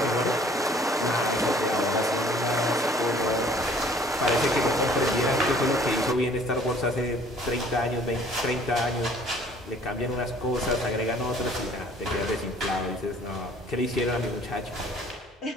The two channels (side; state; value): both; normal; correlation 0.55